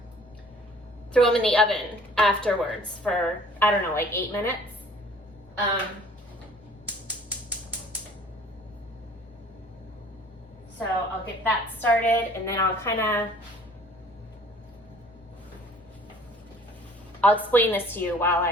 throw them in the oven afterwards for, I don't know, like 8 minutes. So I'll get that started, and then I'll explain this to you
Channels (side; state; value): both; normal; correlation 0.53